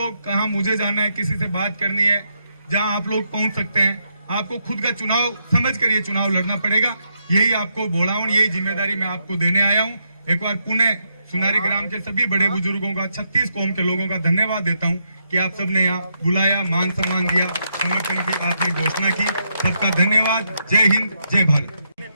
कहाँ मुझे जाना है, किसी से बात करनी है, जहां आप लोग पहुंच सकते हैं, आपको खुद का चुनाव समझ कर ये चुनाव लड़ना पड़ेगा। यही आपको बोलावण, यही जिम्मेदारी मैं आपको देने आया हूं। एक बार पुणे सुनारी ग्राम के सभी बड़े बुजुर्गों का, 36 कौम के लोगों का धन्यवाद देता हूं कि आप सबने यहाँ बुलाया, मान सम्मान दिया, समर्थन की आपने घोषणा की। सबका धन्यवाद। जय हिंद, जय भारत।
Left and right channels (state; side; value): inverted; both; correlation -0.80